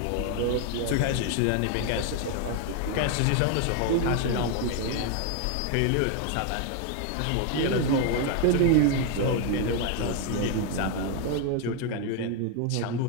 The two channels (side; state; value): both; different; correlation 0.01